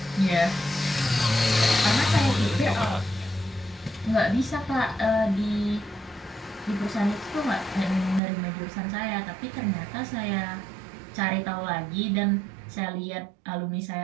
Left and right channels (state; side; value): drops out; left; at 8.2 s